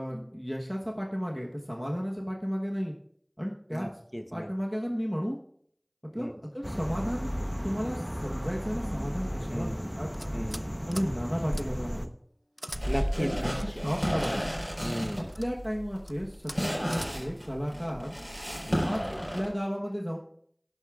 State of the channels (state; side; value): identical; both; correlation 1.00